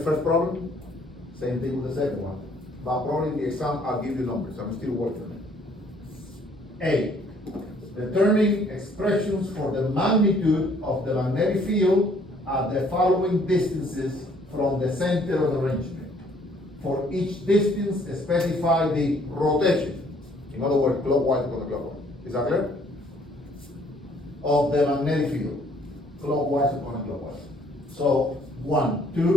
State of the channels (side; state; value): both; normal; correlation 0.62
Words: first problem? Same thing with the second one. But probably in the exam, I'll give you numbers. I'm still working on it. A. Determine expressions for the magnitude of the magnetic field at the following distances from the center of the arrangement. For each distance, specify the rotation. In other words, clockwise or counterclockwise. Is that clear? Of the magnetic field. Clockwise or counterclockwise. So, 1,